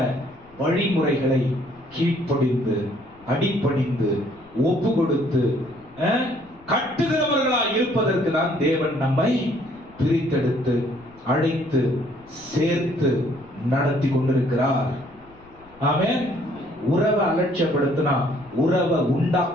வழிமுறைகளை கீழ்ப்படிந்து அடிபணிந்து ஒப்பு கொடுத்து கட்டுகிறவர்களாய் இருப்பதற்கு தான் தேவன் நம்மை பிரித்தெடுத்து அழைத்து சேர்த்து நடத்தி கொண்டிருக்கிறார். ஆமென். உறவை அலட்சியப்படுத்தினா உறவை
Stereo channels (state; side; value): noise; left; rumble, 27 dB below the sound